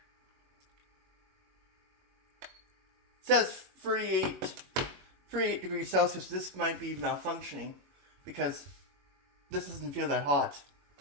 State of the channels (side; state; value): left; late; 21 ms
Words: It says 38 degrees Celsius. This might be malfunctioning because this doesn't feel that hot.